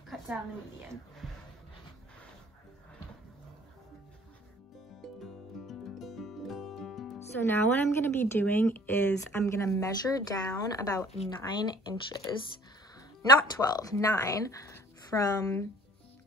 Cut down the median. So now what I'm gonna be doing is I'm gonna measure down about 9 inches not 12, 9 from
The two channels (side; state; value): both; normal; correlation 0.52